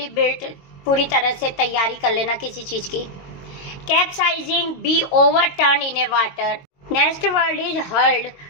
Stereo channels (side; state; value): right; late; 22 ms